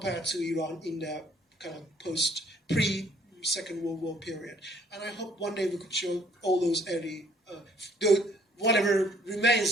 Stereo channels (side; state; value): both; normal; correlation 0.62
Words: to Iran in the kind of pre-Second World War period. And I hope one day we could show all those early, whatever